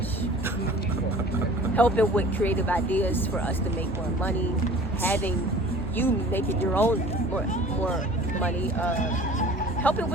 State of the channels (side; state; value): both; normal; correlation 0.45